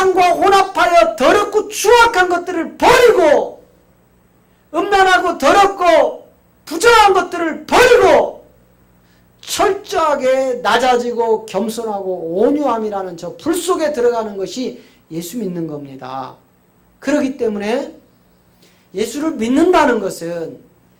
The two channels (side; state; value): both; identical; correlation 1.00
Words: 혼합하여 더럽고 추악한 것들을 버리고 음란하고 더럽고 부정한 것들을 버리고 철저하게 낮아지고 겸손하고 온유함이라는 저 불 속에 들어가는 것이 예수 믿는 겁니다. 그렇기 때문에 예수를 믿는다는 것은